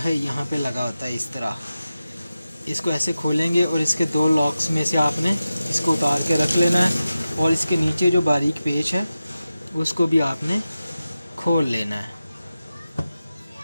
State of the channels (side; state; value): both; inverted; correlation -0.93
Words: यहाँ पे लगा होता है इस तरह। इसको ऐसे खोलेंगे और इसके 2 लॉक्स में से आपने इसको उतार के रख लेना है, और इसके नीचे जो बारीक पेच है उसको भी आपने खोल लेना है।